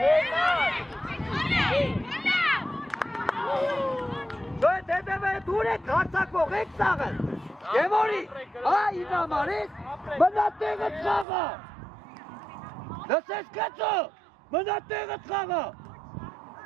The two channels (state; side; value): drops out; left; at 11.2 s